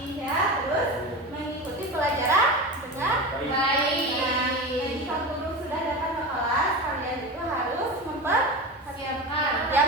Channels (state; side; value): normal; both; correlation 0.25